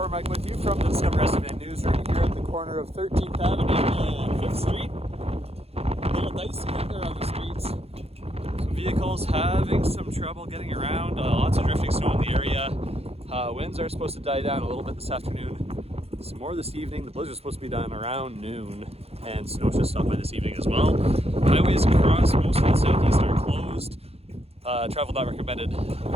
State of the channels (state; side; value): late; left; 0.29 ms